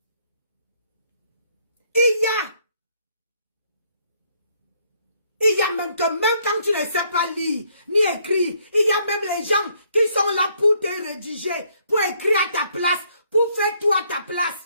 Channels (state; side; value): inverted; both; correlation -0.69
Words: Il y a même quand tu ne sais pas lire, ni écrire, il y a même les gens qui sont là pour te rédiger, pour écrire à ta place, pour faire tout à ta